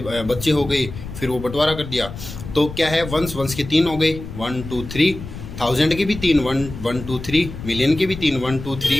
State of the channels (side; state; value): left; noise; rumble, 11 dB below the sound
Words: बच्चे हो गए, फिर वो बंटवारा कर दिया। तो क्या है, वंस के 3 हो गए, 1 2 3, थाउजेंड के भी 3, 1 2 3, मिलियन के भी 3, 1 2